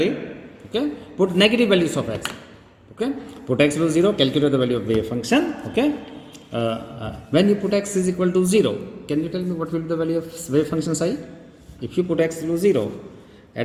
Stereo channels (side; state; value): both; identical; correlation 1.00